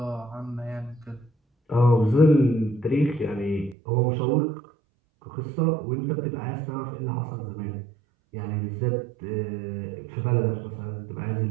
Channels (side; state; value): left; drops out; at 3.8 s